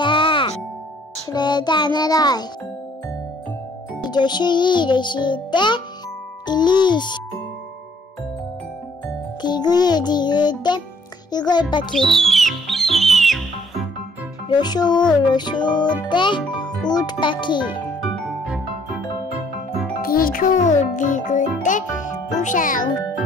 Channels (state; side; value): normal; both; correlation 0.63